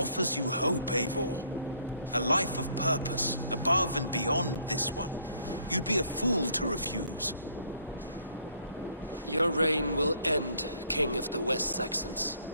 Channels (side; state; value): both; inverted; correlation -0.63